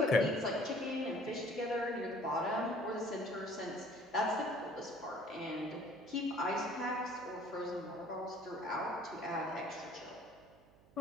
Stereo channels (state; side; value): noise; right; hum, 27 dB below the sound